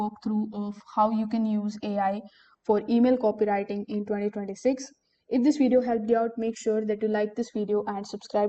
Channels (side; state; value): both; identical; correlation 1.00